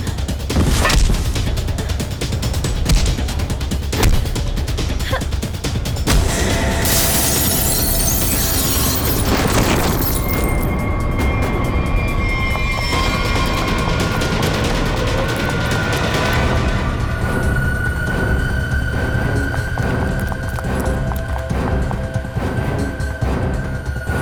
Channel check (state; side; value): identical; both; correlation 1.00